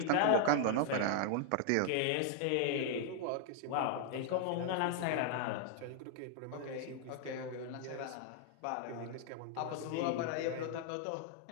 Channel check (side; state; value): both; different; correlation 0.00